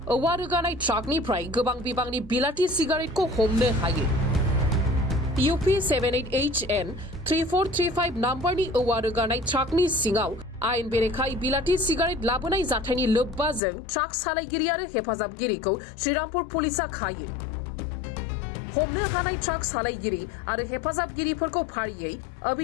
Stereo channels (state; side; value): drops out; right; at 13.6 s